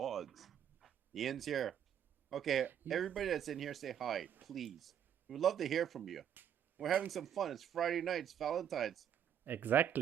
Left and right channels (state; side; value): quieter; left; 9.2 dB